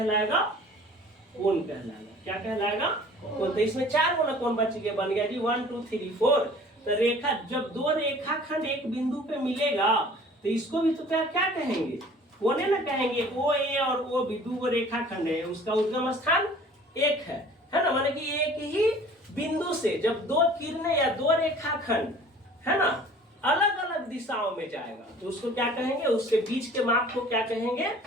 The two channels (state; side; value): normal; both; correlation 0.49